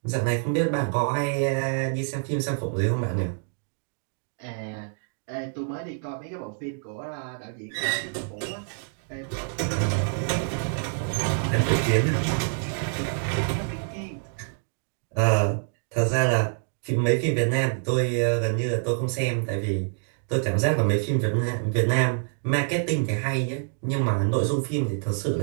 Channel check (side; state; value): left; silent; 61 dB below the other